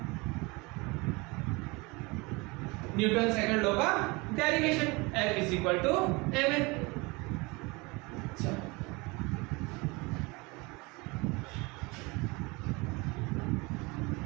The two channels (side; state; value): left; quieter; 25.7 dB